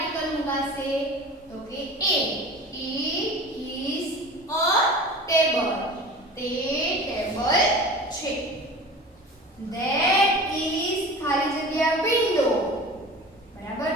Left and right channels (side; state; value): both; normal; correlation 0.37